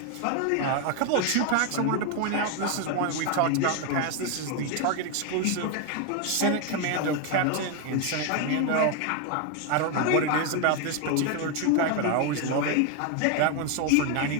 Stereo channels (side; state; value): both; different; correlation 0.01